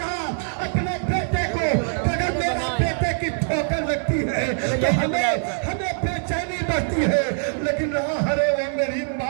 اپنے بیٹے کو اگر میرا بیٹے کی ٹھوکر لگتی ہے تو ہمیں بے چینی بڑھتی ہے لیکن ارے وہ میری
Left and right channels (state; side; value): silent; left; 62 dB below the other